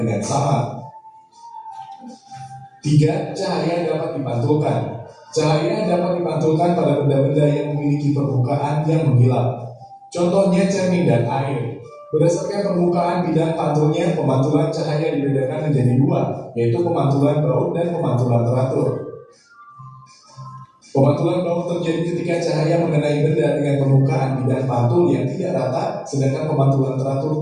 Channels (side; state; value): both; identical; correlation 1.00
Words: sama. 3. Cahaya dapat dipantulkan. Cahaya dapat dipantulkan pada benda-benda yang memiliki permukaan yang mengkilap. Contohnya cermin dan air. Berdasarkan permukaan bidang pantulnya, pemantulan cahaya dibedakan menjadi 2, yaitu pemantulan baut dan pemantulan teratur. Pemantulan baut terjadi ketika cahaya mengenai benda dengan permukaan bidang pantul yang tidak rata, sedangkan pemantulan teratur